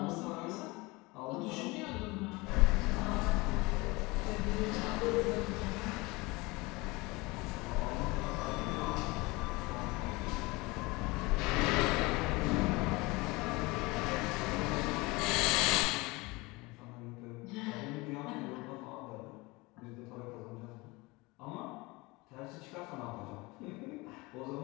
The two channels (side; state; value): right; quieter; 23.8 dB